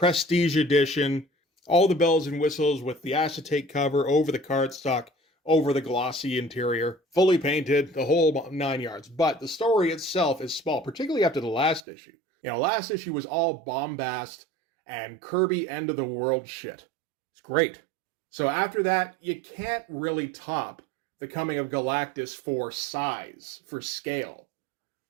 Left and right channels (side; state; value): left; drops out; at 11.8 s